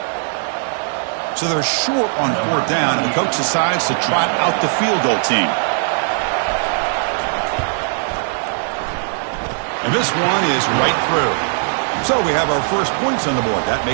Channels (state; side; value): silent; left; 65 dB below the other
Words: So they're short on fourth down, and the coach decides to trot out the field goal team. And this one is right through. So we have our first points on the board. That